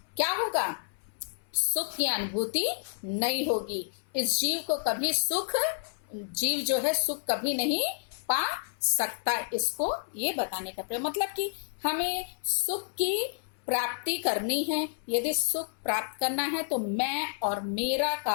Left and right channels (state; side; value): silent; right; 58 dB below the other